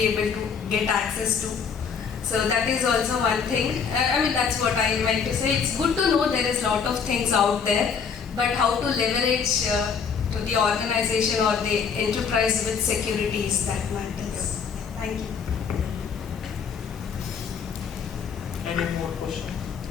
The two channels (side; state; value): right; quieter; 6.3 dB